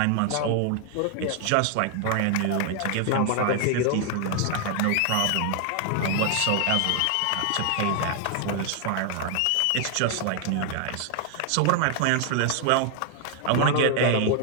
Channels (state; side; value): different; both; correlation 0.00